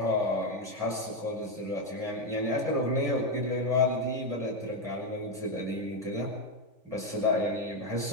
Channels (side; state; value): left; late; 3.5 ms